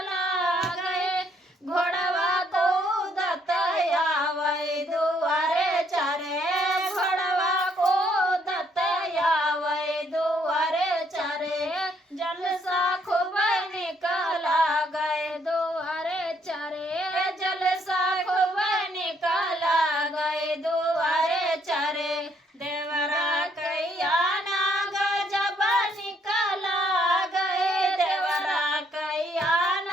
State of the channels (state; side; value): normal; both; correlation 0.70